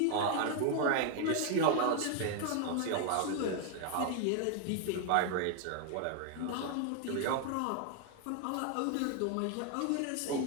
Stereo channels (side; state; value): both; different; correlation 0.01